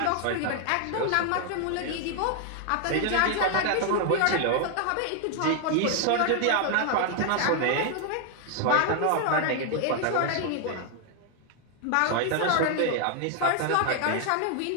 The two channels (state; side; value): different; both; correlation 0.00